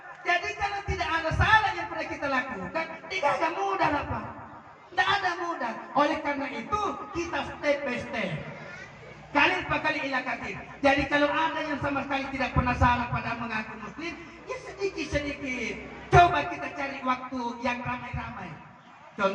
Jadi kalau tidak ada salah yang pernah kita lakukan, tidak ada mudah lah Pak. Tidak ada mudah. Oleh karena itu kita step by step. Kali per kali ilakatir. Jadi kalau ada yang sama sekali tidak pernah salah pada mengaku muslim, ya sedikit-sedikit. Coba kita cari waktu yang ramai-ramai.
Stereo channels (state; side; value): identical; both; correlation 1.00